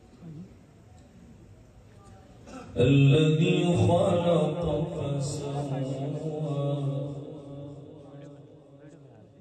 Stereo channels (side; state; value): both; identical; correlation 1.00